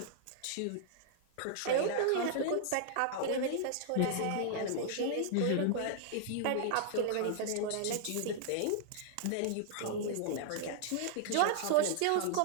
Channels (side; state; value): both; different; correlation 0.00